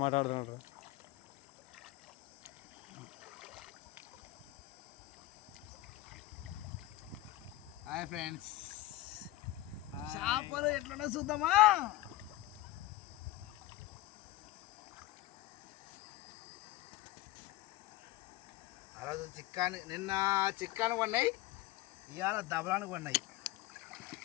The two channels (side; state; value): right; quieter; 16.8 dB